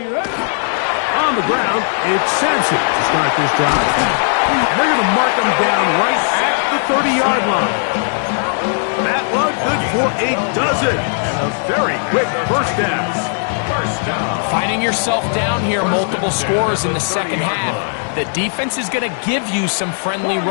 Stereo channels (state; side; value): silent; right; digital silence